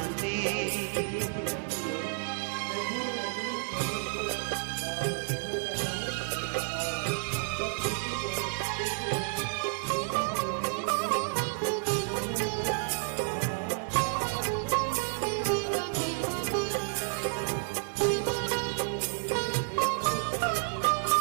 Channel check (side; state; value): left; silent; 57 dB below the other